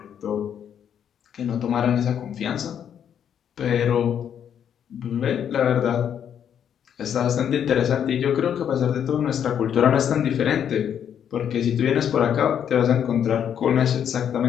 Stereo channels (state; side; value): quieter; right; 8.9 dB